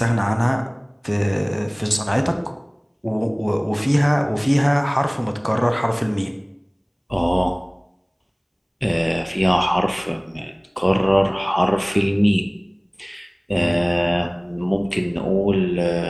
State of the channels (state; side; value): identical; both; correlation 1.00